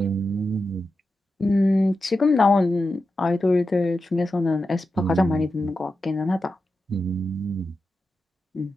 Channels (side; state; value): both; normal; correlation 0.90